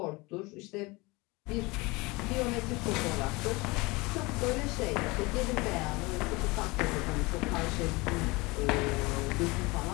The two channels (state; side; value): quieter; right; 24.2 dB